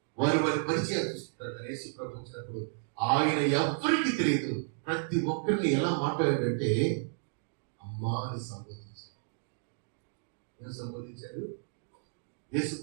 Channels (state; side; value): silent; left; digital silence